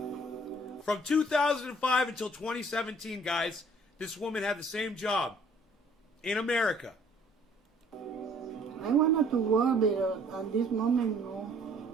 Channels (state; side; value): normal; both; correlation 0.57